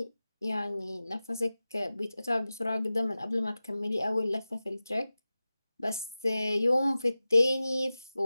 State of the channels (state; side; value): inverted; both; correlation -0.96